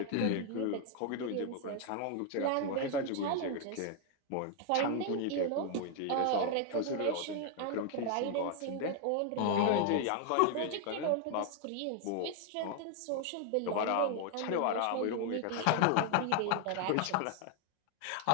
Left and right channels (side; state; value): both; different; correlation 0.00